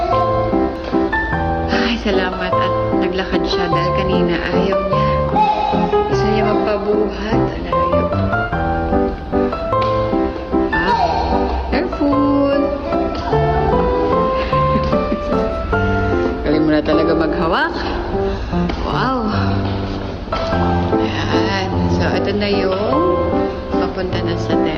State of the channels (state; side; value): identical; both; correlation 1.00